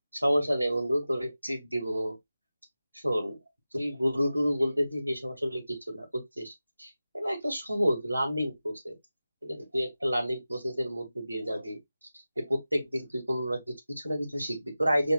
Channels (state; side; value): inverted; both; correlation -0.94